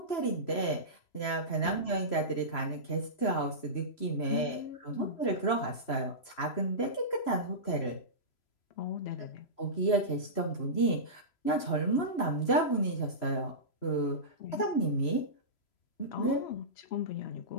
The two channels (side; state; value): right; late; 3.0 ms